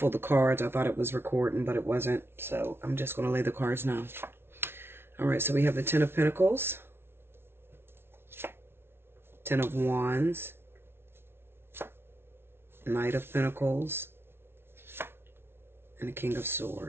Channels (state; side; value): late; left; 0.12 ms